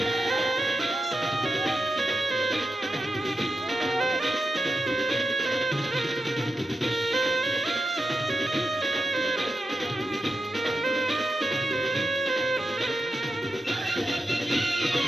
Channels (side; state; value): both; normal; correlation 0.87